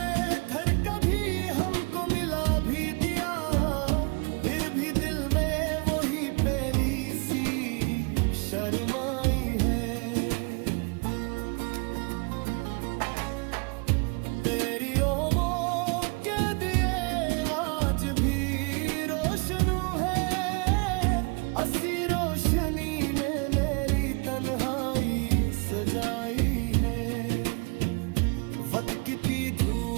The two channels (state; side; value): quieter; left; 31.2 dB